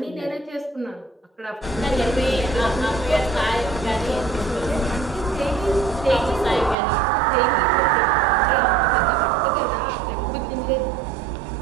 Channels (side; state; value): left; drops out; at 6.8 s